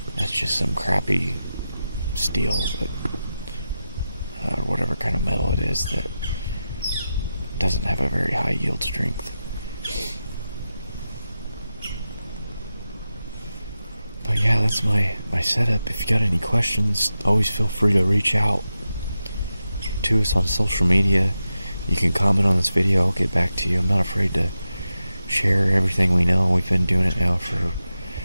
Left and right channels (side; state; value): both; inverted; correlation -0.90